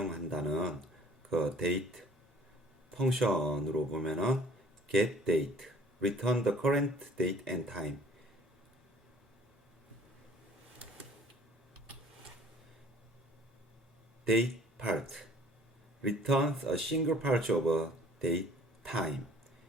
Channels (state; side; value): normal; both; correlation 0.53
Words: 그 데이트 펑션으로 보면은 get date, return the current date and time. date part returns a single part of a date time.